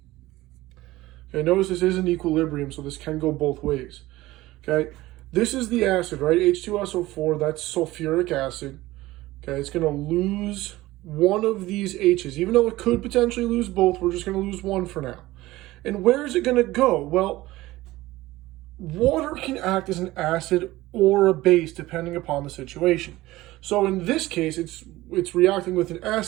notice this is an equilibrium, so this can go both ways. This is the acid, right? H2SO4, that's sulfuric acid. It's going to lose one of these H's. Even though it could potentially lose both, we're just going to lose one for now. And where is it going to go? Well, water can act as an acid or a base depending upon the situation. So in this case, it's reacting with an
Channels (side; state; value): left; quieter; 17.9 dB